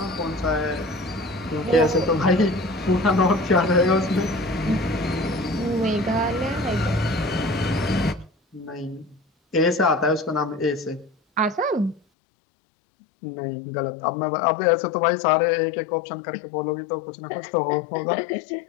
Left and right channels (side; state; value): right; drops out; at 12.0 s